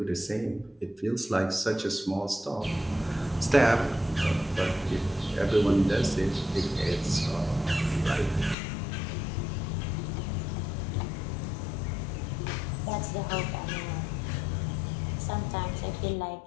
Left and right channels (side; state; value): right; drops out; at 8.6 s